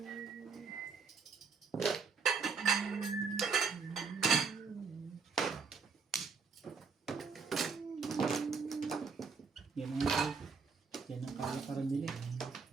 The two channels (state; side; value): quieter; left; 5.3 dB